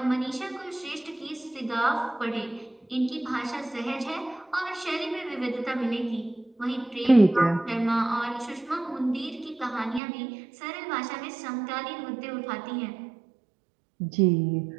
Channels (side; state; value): left; drops out; at 10.0 s